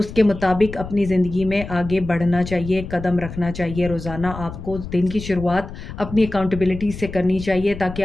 मुताबिक अपनी ज़िंदगी में आगे बढ़ना चाहिए, कदम रखना चाहिए। रोज़ाना आपको दिन की शुरुआत अपनी अकाउंटेबिलिटी से करनी चाहिए, ताकि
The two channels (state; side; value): noise; left; rumble, 11 dB below the sound